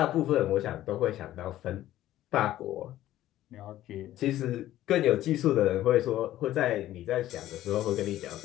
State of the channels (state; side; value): quieter; right; 13.9 dB